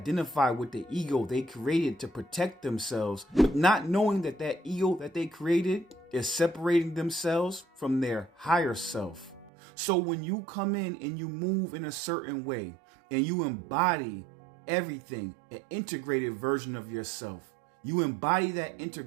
with the ego they created to protect themselves, but not knowing that that ego that they created is separating themselves from their higher self. So when you come in and you move in a certain way and you embody everything, an integrated version of yourself, you embody that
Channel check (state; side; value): drops out; left; at 9.5 s